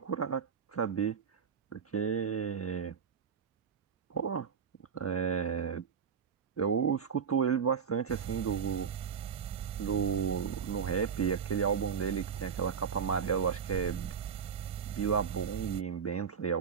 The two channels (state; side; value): quieter; left; 6.9 dB